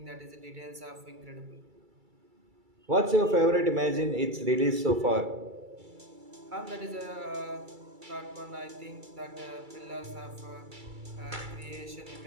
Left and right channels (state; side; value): late; left; 2.3 ms